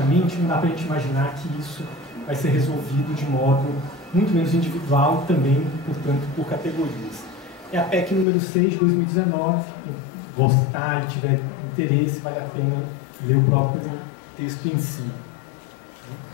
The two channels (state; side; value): drops out; right; at 8.2 s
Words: não dá para a gente imaginar que isso vai ser resolvido de modo muito menos individual, também, portanto, por categorias. É a PEC número 6 de 2019, quem gostar e tiver interesse, vale a pena ler o próprio texto em si.